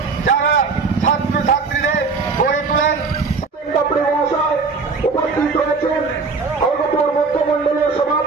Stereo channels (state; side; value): quieter; left; 4.6 dB